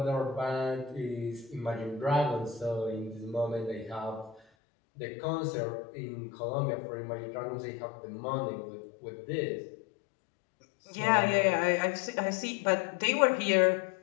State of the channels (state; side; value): drops out; right; at 4.4 s